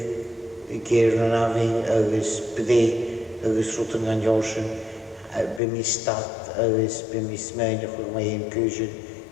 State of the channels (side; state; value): right; drops out; at 5.6 s